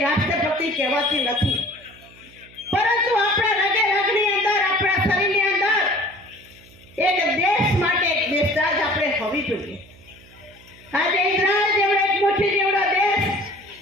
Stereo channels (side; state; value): right; noise; hum, 25 dB below the sound